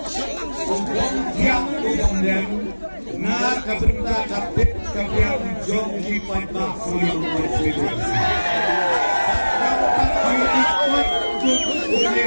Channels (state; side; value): inverted; both; correlation -1.00